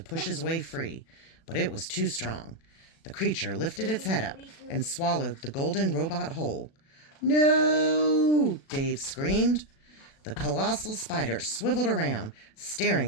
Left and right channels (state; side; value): late; right; 36 ms